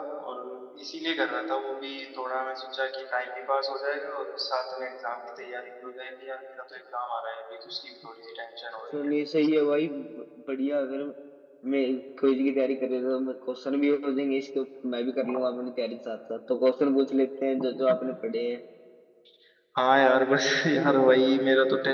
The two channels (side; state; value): both; identical; correlation 1.00